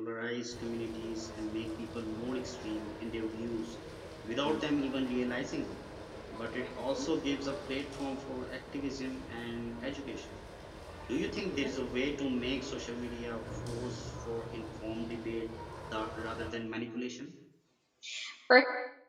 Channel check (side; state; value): both; identical; correlation 1.00